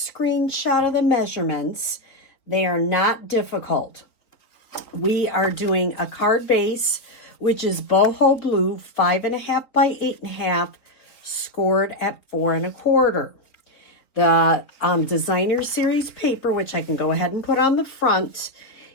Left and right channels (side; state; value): right; late; 4.0 ms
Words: of the measurements, they are not difficult. We are doing a card base, which is boho blue, 5.5 by 8.5, scored at 4 1/4. The designer series paper, which I can go ahead and put on the front,